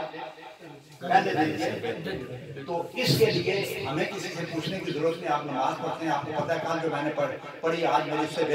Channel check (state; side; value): identical; both; correlation 1.00